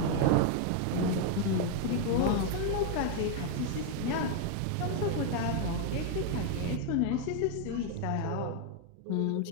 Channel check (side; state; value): both; different; correlation 0.01